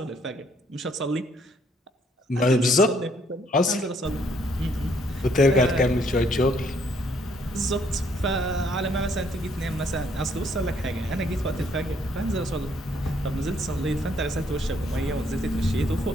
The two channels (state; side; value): normal; both; correlation 0.67